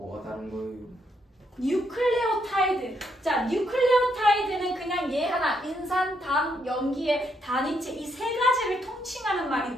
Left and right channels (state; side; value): normal; both; correlation 0.76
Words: 다른 거예요? 뉴클레오타이드. 자, 뉴클레오타이드는 그냥 얘 하나, 인산, 당, 염기의 단위체 이 3가지를 통칭하는